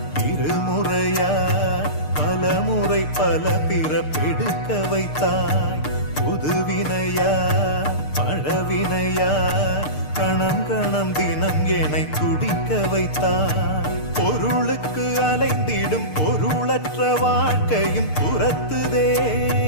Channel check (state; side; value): late; right; 6.6 ms